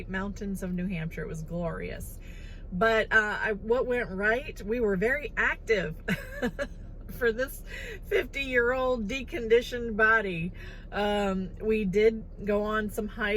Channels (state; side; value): identical; both; correlation 1.00